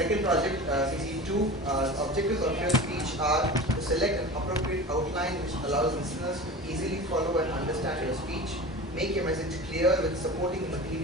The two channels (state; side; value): normal; both; correlation 0.33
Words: project, CC2. Objectives of your speech are to select an appropriate outline which allows listeners to easily follow and understand your speech, make your message clear with supporting